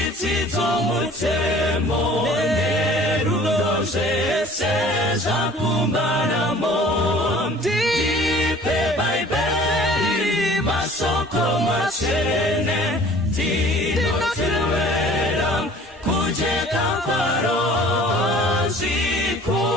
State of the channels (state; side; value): normal; both; correlation 0.49